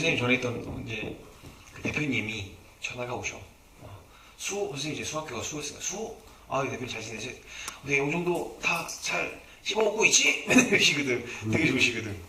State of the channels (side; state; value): both; identical; correlation 1.00